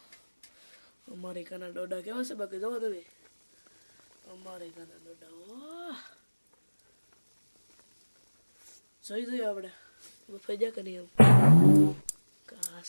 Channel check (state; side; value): inverted; both; correlation -1.00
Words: Americana doda કેવા છે બાકી જોવો તમે. Americana doda. જોઈ આપણે. ફાઈ જા કે નહીં એમ.